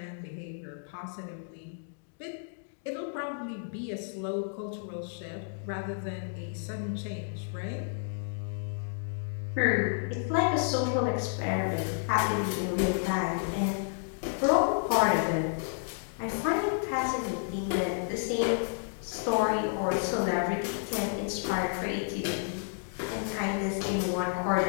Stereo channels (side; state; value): right; silent; digital silence